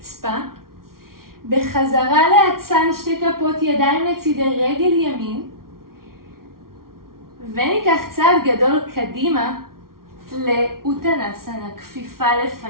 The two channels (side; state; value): left; late; 0.93 ms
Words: בחזרה לאצן 2 כפות ידיים לצידי רגל ימין. וניקח צעד גדול קדימה לאוטנסנה, כפיפה